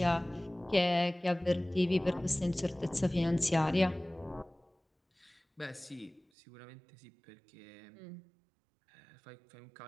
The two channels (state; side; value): drops out; left; at 6.2 s